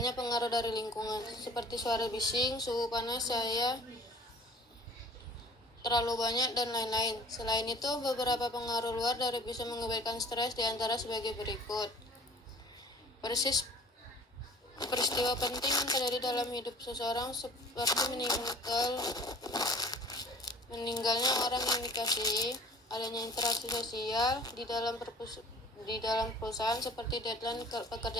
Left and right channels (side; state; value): both; normal; correlation 0.48